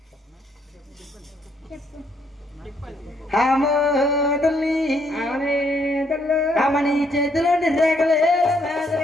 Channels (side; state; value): both; normal; correlation 0.70